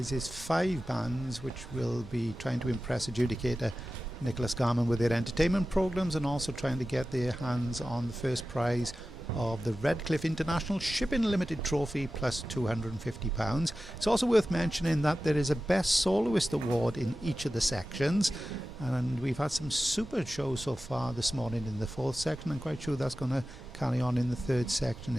5 bands, which will be trying to impress adjudicator Nicholas Garman with their entertainment programs, and also trying to get their hands on the first prize of the Redcliffe International Shipping Limited Trophy plus £250. It's also worth mentioning that there is a Best Soloist Award in each of the sections, and we've had some super shows so far this morning in the 4th section. I'm quite sure that's going to carry on in the 3rd section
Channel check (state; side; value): normal; both; correlation 0.94